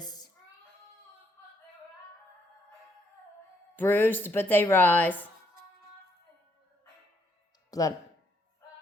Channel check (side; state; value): both; normal; correlation 0.72